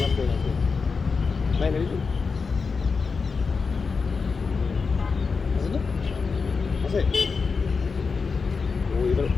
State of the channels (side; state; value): right; quieter; 4.9 dB